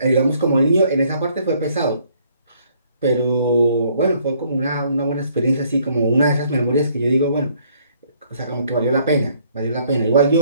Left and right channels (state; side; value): inverted; both; correlation -0.65